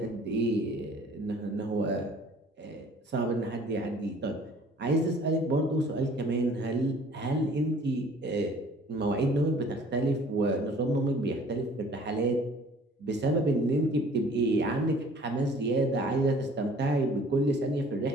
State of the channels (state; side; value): normal; both; correlation 0.52